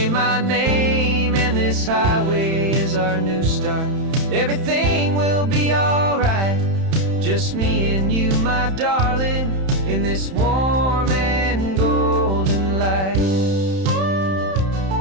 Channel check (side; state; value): left; late; 31 ms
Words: my name. And this highway is our new start. Everything will be alright, just me and you, my darling, in this warm and golden light.